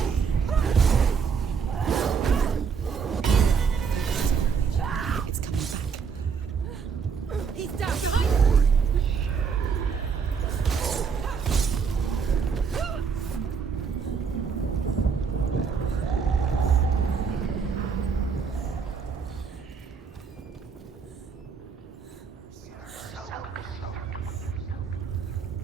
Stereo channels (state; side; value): quieter; left; 6.0 dB